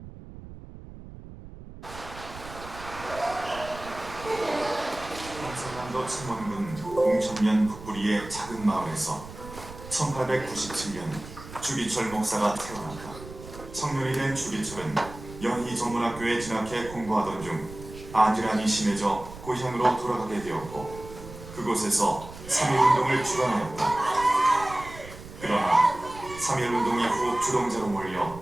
경상남도 창원군 공천면 북부리의 작은 마을에서 1897년 주기철 목사가 태어났다. 청년이 된 주기철은 연희 전문학교에 진학해 공부하던 중 안질환이 심해져 고향으로 돌아가게 되었고 그곳에서 3.1운동을 주관하였다. 그러나 3.1운동 이후 주동자로 몰려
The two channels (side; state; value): right; noise; rumble, 15 dB below the sound